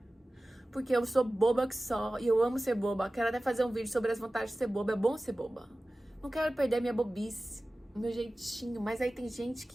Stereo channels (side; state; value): both; normal; correlation 0.96